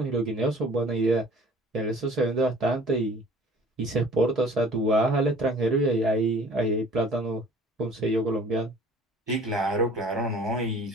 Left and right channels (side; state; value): both; normal; correlation 0.49